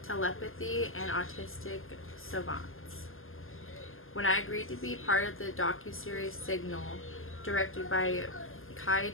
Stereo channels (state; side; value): late; right; 0.60 ms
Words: Telepathy and Autistic Savants. When I agreed to be part of the docuseries Signal, directed by Kai